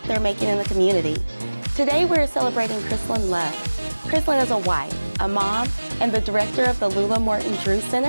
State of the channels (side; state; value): both; inverted; correlation -1.00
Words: they're making in the community. Today we're celebrating Krissalyn Love. Krissalyn is a wife, a mom, and the director of the Lula Morton Drewes